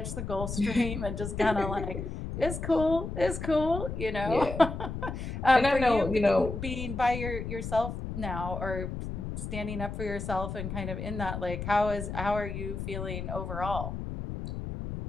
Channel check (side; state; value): left; noise; rumble, 6 dB below the sound